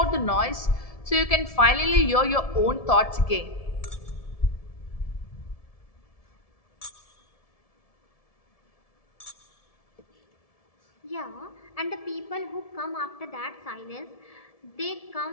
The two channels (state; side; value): late; right; 1.7 ms